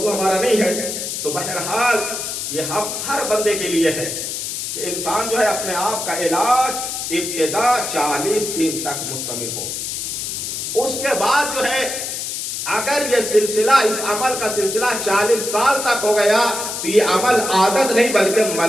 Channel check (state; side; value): noise; left; hiss, 4 dB below the sound